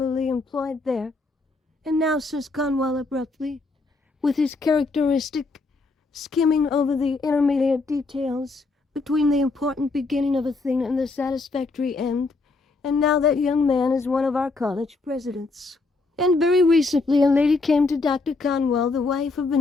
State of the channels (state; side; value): quieter; right; 3.6 dB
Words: employed there. And now, says Conwell abruptly, with his characteristic skimming over the intermediate details between the important beginning of a thing and the satisfactory end, and now that young man is one of our college presidents. And very recently a lady came to Dr. Conwell, the wife of